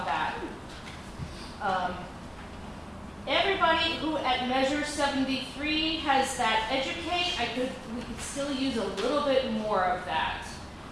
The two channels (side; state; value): both; identical; correlation 1.00